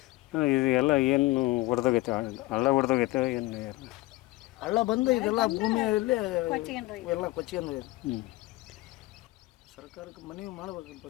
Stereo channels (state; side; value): quieter; right; 19.6 dB